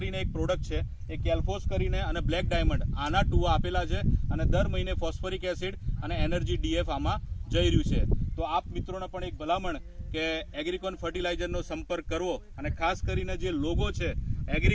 એક પ્રોડક્ટ છે, એ કેલ્ફોસ કરીને અને બ્લેક ડાયમંડ આના ટુવા આપેલા છે અને દર મહિને ફોસ્ફરિક એસિડ અને એનર્જી ડીએફ આમાં જઈ રહ્યું છે. તો આપ મિત્રોને પણ એક ભલામણ કે એગ્રીકોન ફર્ટિલાઇઝરનો સંપર્ક કરવો અને ખાસ કરીને જે લોગો છે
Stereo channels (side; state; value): both; identical; correlation 1.00